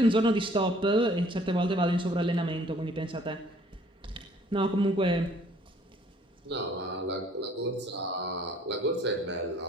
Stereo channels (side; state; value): both; normal; correlation 0.58